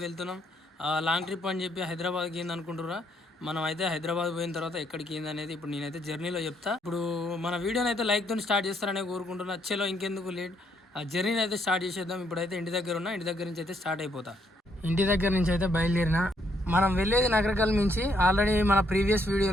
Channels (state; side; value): normal; both; correlation 0.72